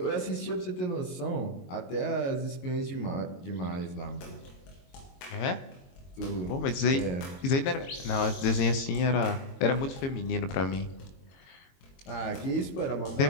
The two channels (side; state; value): right; late; 22 ms